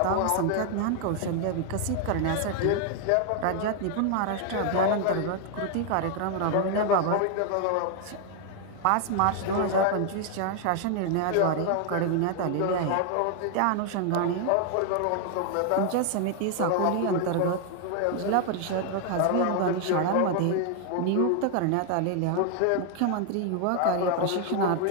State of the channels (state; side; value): different; both; correlation 0.00